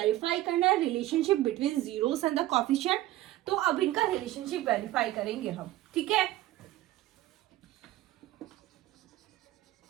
करना है relationship between zeros and the coefficient. तो अब इनका रिलेशनशिप वेरीफाई करेंगे हम, ठीक है।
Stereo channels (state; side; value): quieter; left; 15.7 dB